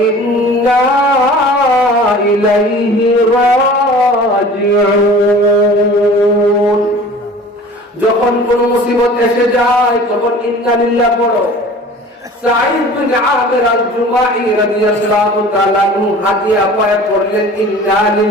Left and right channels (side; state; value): both; normal; correlation 0.43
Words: إليه راجعون। যখন কোন মুসিবত এসে যায় তখন ইন্না লিল্লাহ পড়ো। সাঈদ বিন আমির আল-জুমাহি রাদিয়াল্লাহু তাআলা হাদিয়া পায় পড়লেন, ইন্না